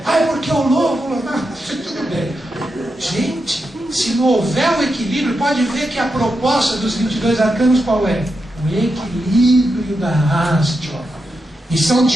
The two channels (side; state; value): both; normal; correlation 0.87